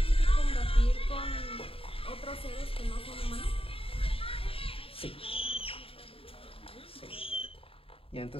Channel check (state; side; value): late; right; 0.27 ms